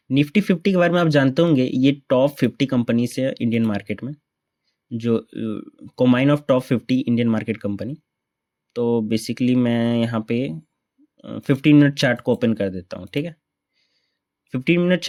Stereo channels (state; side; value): identical; both; correlation 1.00